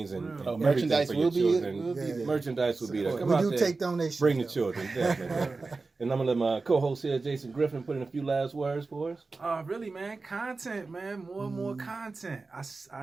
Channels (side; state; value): left; quieter; 3.9 dB